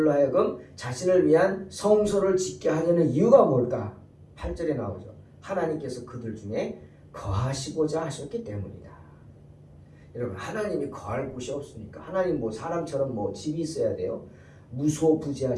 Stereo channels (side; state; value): both; identical; correlation 1.00